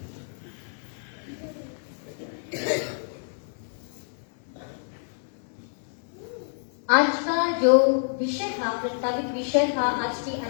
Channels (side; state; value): right; silent; digital silence